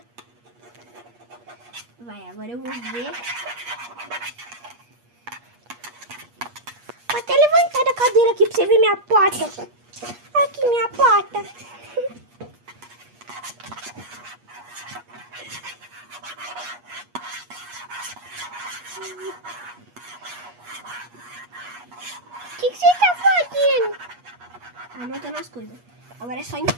Vai, agora eu vou ver. Vou até levantar da cadeira aqui pra você ver minha pata. Aqui, minha pata. O que você tá fazendo? Anotando as coisas. Agora é só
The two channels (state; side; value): late; left; 8.4 ms